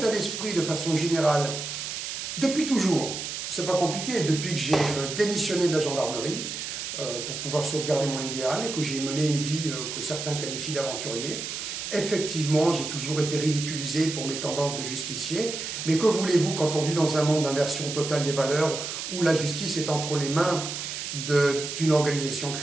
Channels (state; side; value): noise; right; hiss, 6 dB below the sound